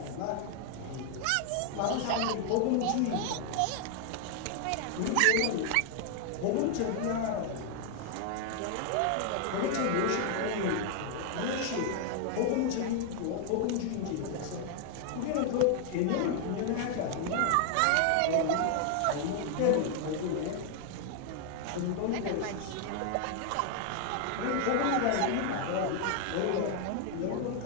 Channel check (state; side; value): different; both; correlation 0.00